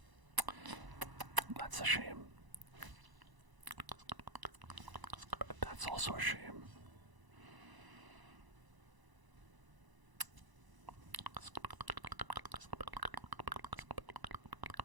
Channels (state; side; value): late; left; 1.0 ms